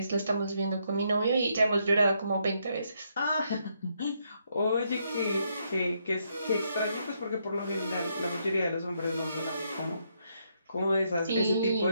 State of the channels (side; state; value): both; inverted; correlation -0.76